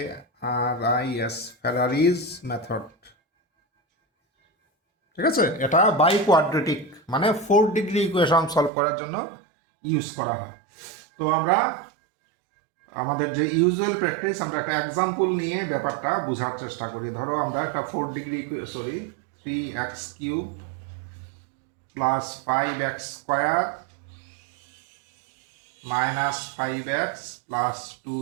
FERRARIS ফেরারিজ মেথড। ঠিক আছে, এটা বাই কোয়াড্রেটিক মানে 4 ডিগ্রি ইকুয়েশন সলভ করার জন্য ইউজ করা হয়। তো আমরা আমাদের যে ইউজুয়াল প্র্যাকটিস, আমরা একটা এক্সাম্পল নিয়ে ব্যাপারটা বোঝার চেষ্টা করি। ধরো আমরা একটা 3x³ plus 5x² minus 5x plus 2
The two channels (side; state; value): left; drops out; at 8.7 s